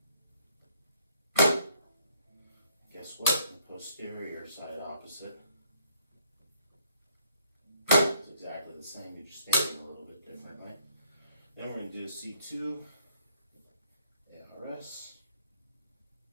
Guess what? The posterior side opposite is exactly the same. You're just standing a little bit differently. Then we're going to do a C2, ARS,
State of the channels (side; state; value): both; inverted; correlation -0.67